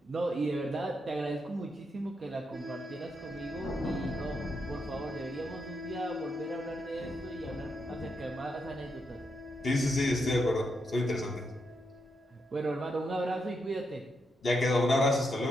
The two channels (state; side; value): normal; both; correlation 0.82